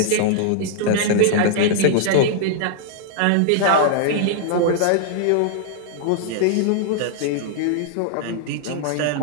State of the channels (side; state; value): both; different; correlation -0.01